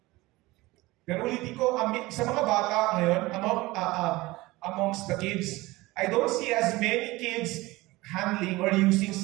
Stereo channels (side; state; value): left; quieter; 20.4 dB